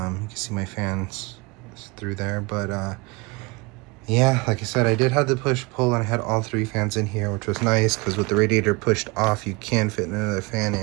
see my fans through there, but yeah, like I said, I did have the push-pull and I had all 3 fans in here, which was nice because with the radiator pushed off, you can fit another fan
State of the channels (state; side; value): quieter; left; 26.5 dB